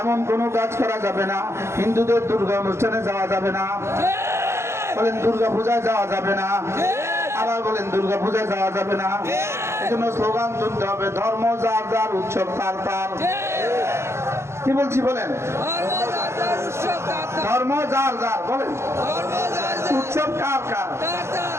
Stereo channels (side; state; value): left; late; 0.13 ms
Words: এমন কোনো কাজ করা যাবে না। হিন্দুদের দুর্গা অনুষ্ঠানে যাওয়া যাবে না, বলেন দুর্গা পূজায় যাওয়া যাবে না, আবার বলেন দুর্গা পূজায় যাওয়া যাবে না। এজন্য স্লোগান তুলতে হবে, ধর্ম যার যার, উৎসব তার তার। কি বলছি বলেন? ধর্ম যার যার, বলেন উৎসব কার কার?